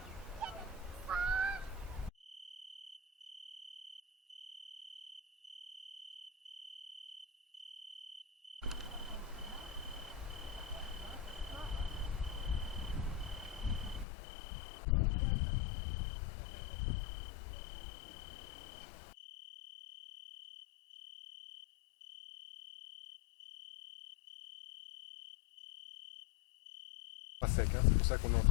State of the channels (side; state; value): right; drops out; at 14.1 s